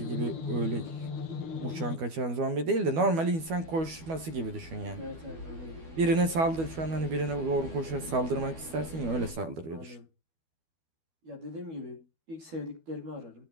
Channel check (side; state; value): left; late; 12 ms